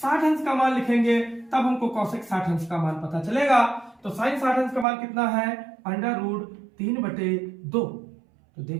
अंश का मान लिखेंगे, तब हमको cosec 60 अंश का मान पता चलेगा। तो sin 60 अंश का मान कितना है, √3/2। तो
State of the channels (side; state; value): left; drops out; at 4.9 s